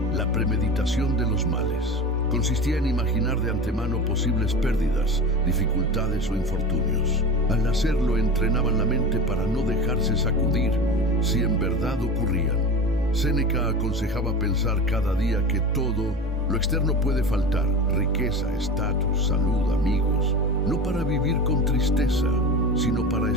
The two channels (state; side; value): normal; both; correlation 0.30